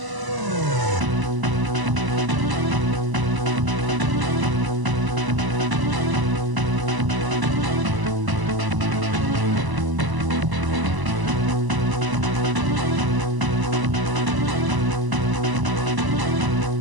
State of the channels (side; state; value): left; late; 1.0 ms